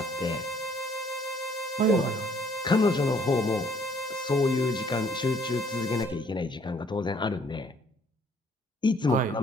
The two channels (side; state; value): both; normal; correlation 0.62